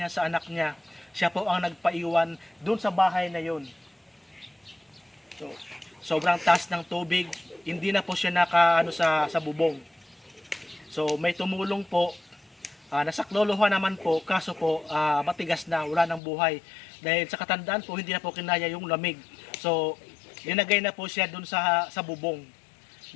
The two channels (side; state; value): right; drops out; at 16.2 s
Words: sa anak niya. Siya po ang nagpaiwan dun sa bahay na yun. So, sobrang taas ng tubig, hindi na po siya naka sa bubong. So may tumulong po, nasaklolohan naman po, kaso po matigas na, wala ng buhay. Dahil sa katandaan po, hindi na po kinaya yung lamig. So linagay na po siya dun sa bubong